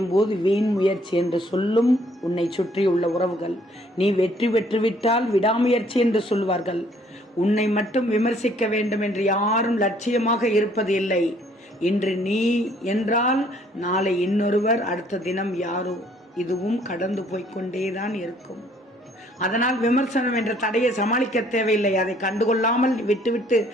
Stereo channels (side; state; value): both; normal; correlation 0.62